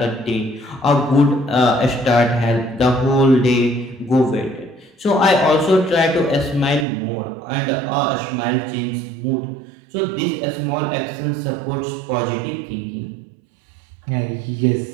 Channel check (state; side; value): drops out; left; at 6.9 s